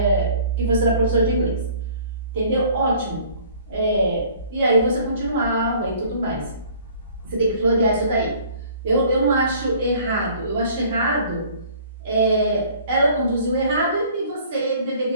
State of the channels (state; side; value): inverted; both; correlation -0.53